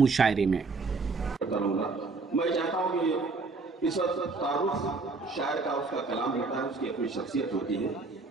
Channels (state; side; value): quieter; left; 3.9 dB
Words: में। मैं चाहता हूँ कि इस वक्त तारुफ शायर का उसका कलाम होता है, उसकी अपनी शख्सियत होती है।